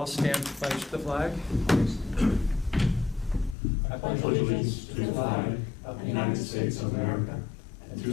stand to pledge the flag? I pledge allegiance to the flag of the United States of America and to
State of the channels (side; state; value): right; drops out; at 3.6 s